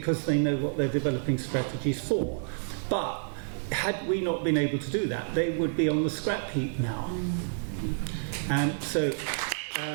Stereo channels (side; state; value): left; silent; digital silence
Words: they know what they're developing strategies for. But had we not been able to do that, they would be on the scrap heap now. And so,